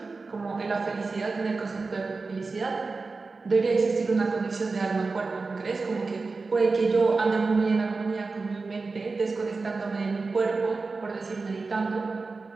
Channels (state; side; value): quieter; left; 4.0 dB